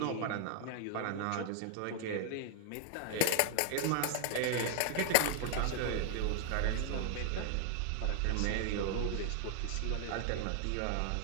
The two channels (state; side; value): different; both; correlation 0.00